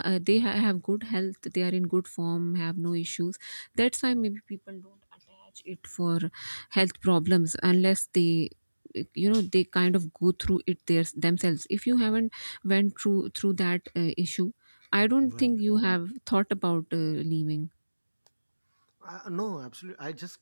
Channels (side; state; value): both; inverted; correlation -1.00